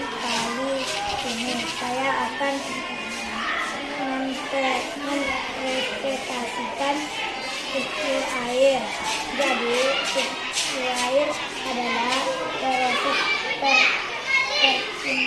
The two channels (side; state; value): both; identical; correlation 1.00